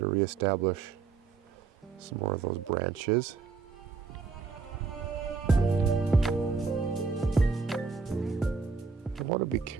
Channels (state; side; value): quieter; left; 4.9 dB